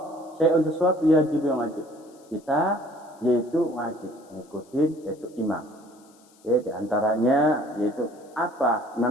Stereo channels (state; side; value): noise; left; hiss, 30 dB below the sound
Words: syai'un sesuatu yajib yang wajib. Kita yaitu wajib mengikuti yaitu imam. Ya, di antaranya yaitu apa